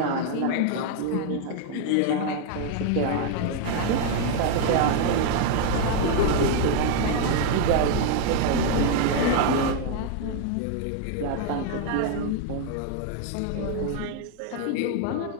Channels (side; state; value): both; different; correlation 0.00